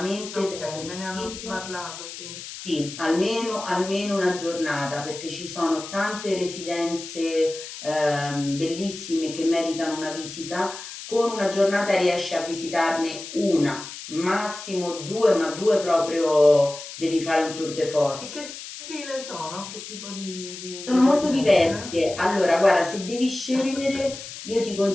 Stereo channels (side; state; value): left; noise; hiss, 11 dB below the sound